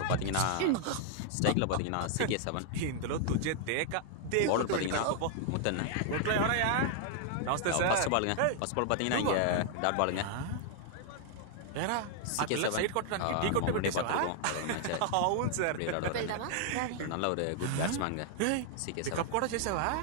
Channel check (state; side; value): different; both; correlation 0.00